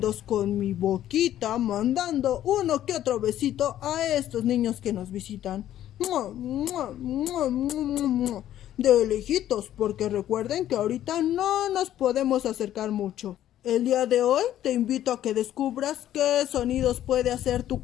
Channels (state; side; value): quieter; right; 12.1 dB